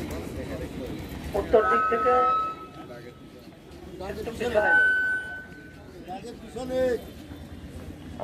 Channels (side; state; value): both; identical; correlation 1.00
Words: উত্তর দিক থেকে পিছনে